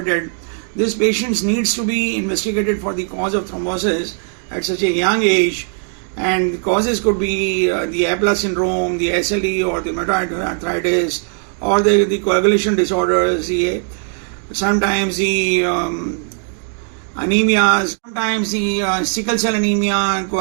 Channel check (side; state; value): left; silent; 56 dB below the other